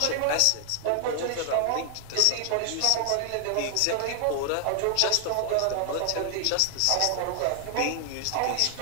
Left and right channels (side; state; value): both; different; correlation 0.00